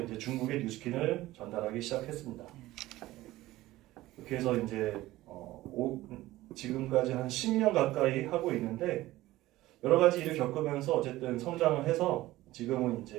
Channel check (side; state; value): left; quieter; 16.9 dB